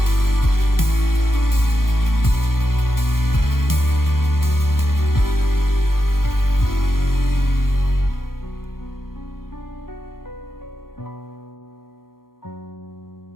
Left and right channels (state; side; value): late; right; 0.92 ms